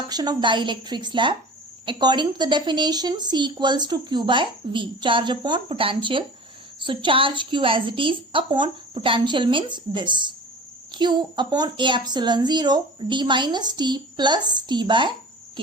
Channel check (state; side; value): normal; both; correlation 0.39